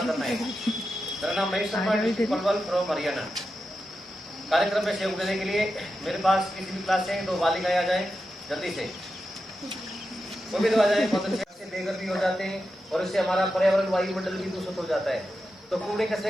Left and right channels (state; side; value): normal; both; correlation 0.89